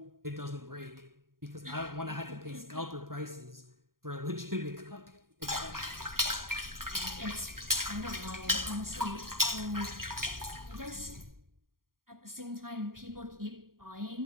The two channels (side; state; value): left; late; 0.92 ms